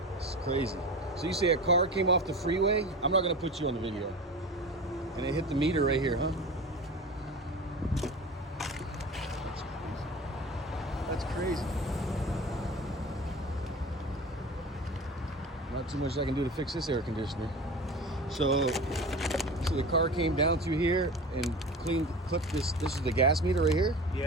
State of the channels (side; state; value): both; normal; correlation 0.33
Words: It's crazy. So you say a car came off the freeway? I'm not gonna put you on the video. And it hit the meter right here, huh? That's crazy. Not too much I can do to fix this air conditioner. So the car came down through here and clipped this. This is the gas meter right here?